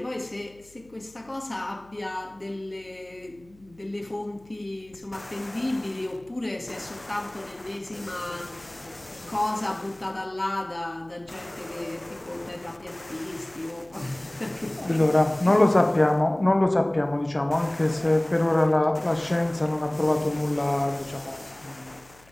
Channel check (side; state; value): left; noise; hum, 28 dB below the sound